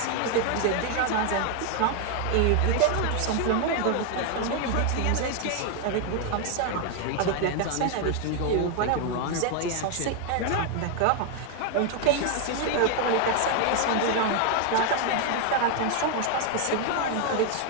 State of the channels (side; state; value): both; different; correlation 0.01